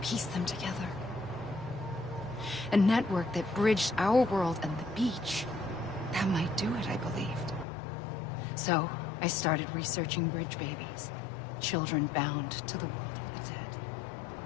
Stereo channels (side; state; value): right; drops out; at 7.7 s